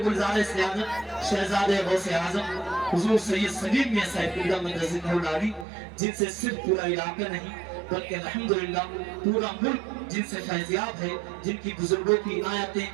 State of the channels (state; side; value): drops out; left; at 5.7 s